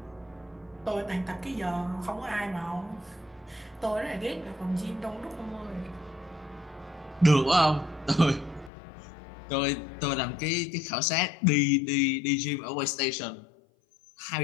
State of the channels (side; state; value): right; drops out; at 8.7 s